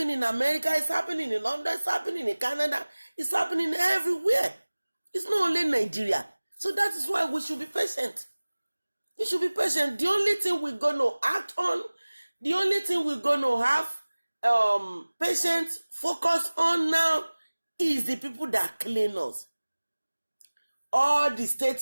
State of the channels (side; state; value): both; inverted; correlation -1.00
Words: in America, it's happening in London, it's happening in Canada, it's happening everywhere. It's not only Nigeria. So that is why we should be patient. You should be patient. The only thing we're going to act on, the only thing we're going to have patience focus on now is the people that clean us. All the